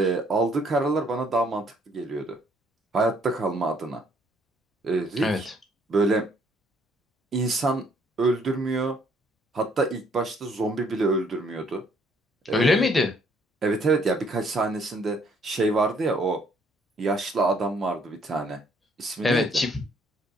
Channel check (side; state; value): both; normal; correlation 0.64